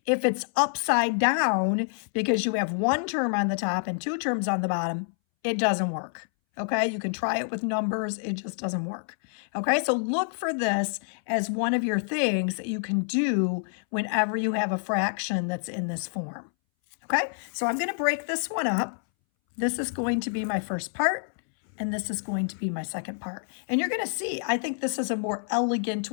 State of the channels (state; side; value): silent; right; 60 dB below the other